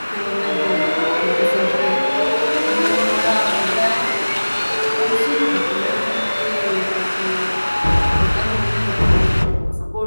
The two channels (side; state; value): both; inverted; correlation -1.00